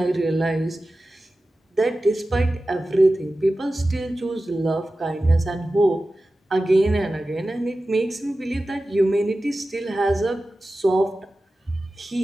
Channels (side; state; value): both; normal; correlation 0.95